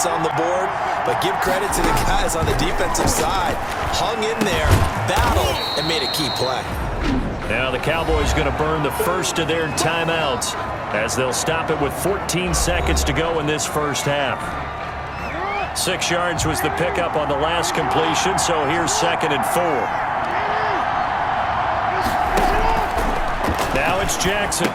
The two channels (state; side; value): identical; both; correlation 1.00